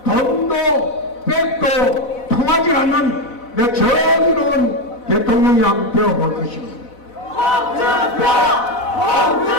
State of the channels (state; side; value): late; right; 4.0 ms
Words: 돈도 백도 통하지 않는 내 정의로운 대통령이 한번 되어볼 것입니다. 홍준표!